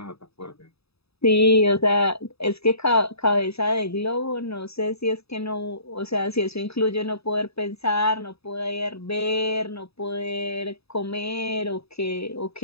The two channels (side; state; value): right; late; 0.78 ms